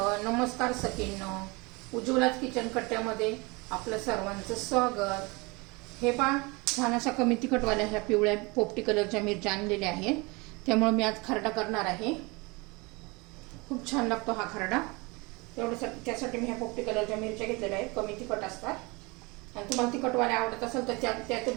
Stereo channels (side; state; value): left; quieter; 26.4 dB